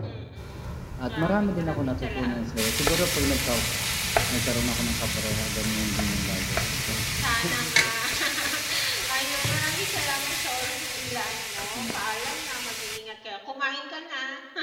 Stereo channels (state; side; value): identical; both; correlation 1.00